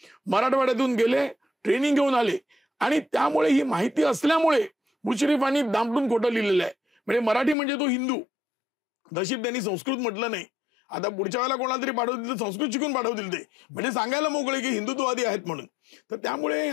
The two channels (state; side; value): drops out; right; at 7.6 s